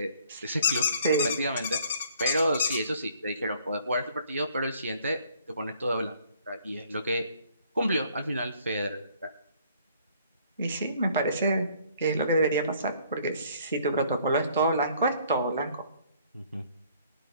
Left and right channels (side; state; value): both; inverted; correlation -0.60